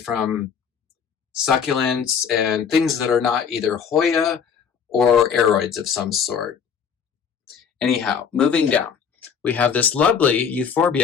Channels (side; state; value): right; quieter; 7.0 dB